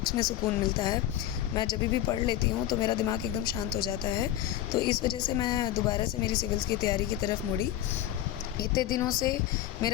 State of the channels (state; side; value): quieter; right; 12.9 dB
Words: में सुकून मिलता है। मैं जब भी पढ़ लेती हूँ तो मेरा दिमाग एकदम शांत हो जाता है। तो इस वजह से मैं दोबारा से मेरी सिविल्स की तैयारी की तरफ मुड़ी। इतने दिनों से